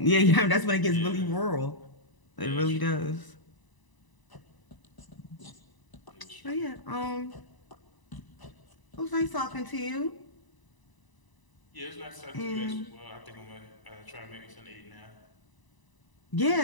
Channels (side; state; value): right; late; 1.0 ms